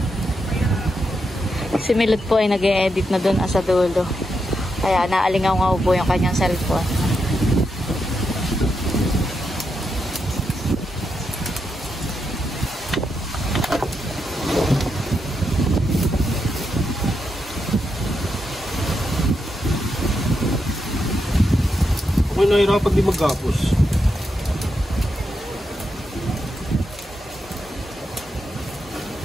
Si Milot po ay nag-e-edit na doon sa dulo. Kaya naalingaw-ngaw po yung kanyang cellphone. Ako'y nahirapan di magkapos.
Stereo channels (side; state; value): both; normal; correlation 0.84